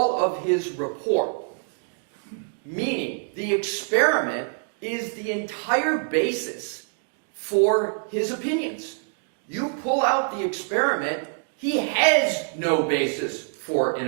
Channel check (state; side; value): silent; left; 61 dB below the other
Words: of his report, meaning the experiment is the entire basis for his opinions. You pull out the experiment, he has no basis for an